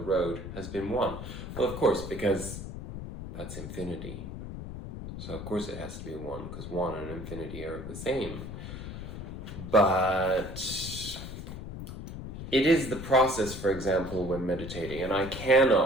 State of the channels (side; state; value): left; noise; rumble, 9 dB below the sound